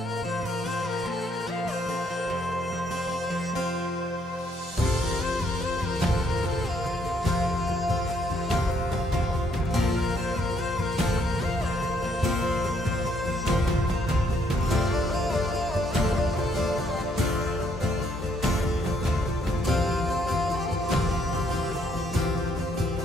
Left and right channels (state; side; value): normal; both; correlation 0.69